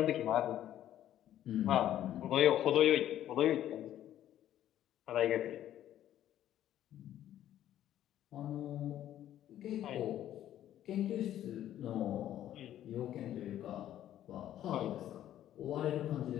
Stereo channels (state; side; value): quieter; right; 12.0 dB